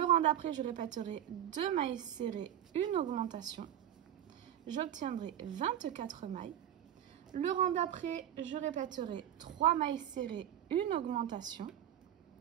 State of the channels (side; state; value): left; quieter; 10.9 dB